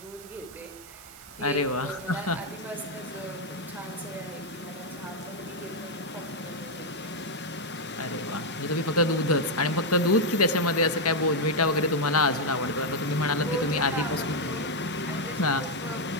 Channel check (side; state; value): right; noise; hiss, 19 dB below the sound